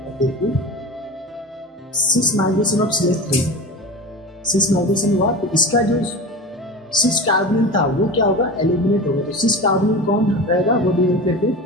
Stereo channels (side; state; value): both; normal; correlation 0.30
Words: देखिए cis migration of CH3, cis migration हुआ तो इसका जो सिस कार्बोनिल था वो क्या होगा, एलिमिनेट होगा। तो सिस कार्बोनिल कौन रहेगा वो भी करके